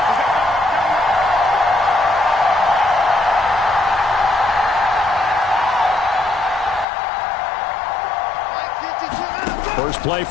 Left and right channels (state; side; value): drops out; right; at 6.9 s